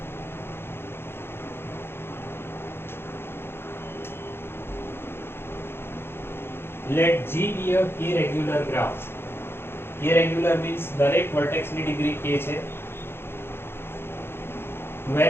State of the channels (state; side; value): late; right; 0.11 ms